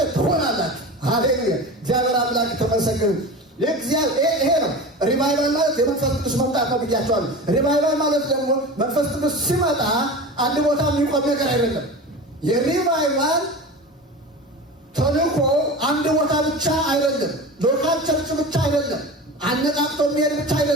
ትሆናላችሁ። ሃሌሉያ! እግዚአብሔር አምላክ ተመሰገነ። ይሄ ነው ሪቫይቫል ማለት የመንፈስ ቅዱስ መምጣት ነው ብያቸዋለሁ። ሪቫይቫል ማለት ደግሞ መንፈስ ቅዱስ ሲመጣ አንድ ቦታ የሚቆም ነገር አይደለም። የሪቫይቫል ተልእኮ አንድ ቦታ ብቻ አይደለም፣ ሎካል ቸርች ብቻ አይደለም፣ አነቃቅቶ የሚሄድ ብቻ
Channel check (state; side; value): normal; both; correlation 0.31